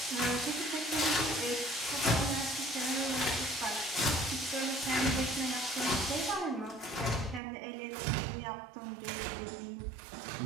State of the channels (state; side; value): drops out; left; at 7.4 s